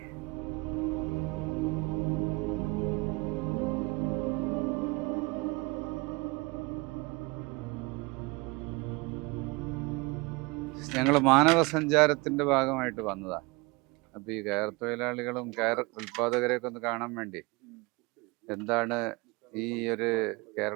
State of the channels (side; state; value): left; quieter; 26.0 dB